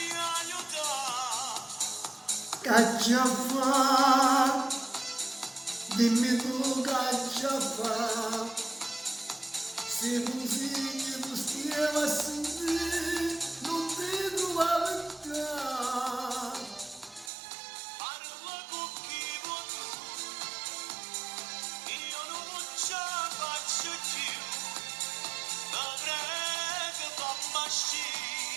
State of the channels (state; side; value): drops out; left; at 17.3 s